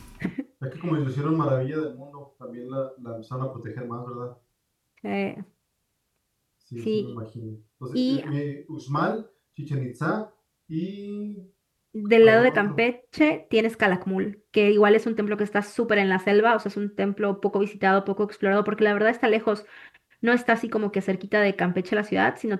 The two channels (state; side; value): identical; both; correlation 1.00